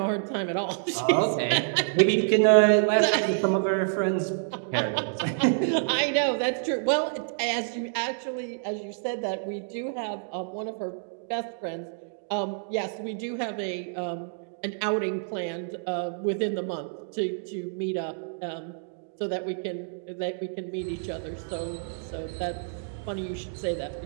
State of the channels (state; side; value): silent; left; digital silence